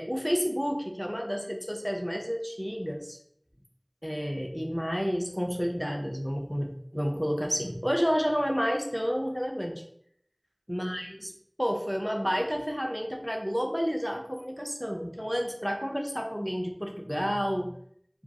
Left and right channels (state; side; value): identical; both; correlation 1.00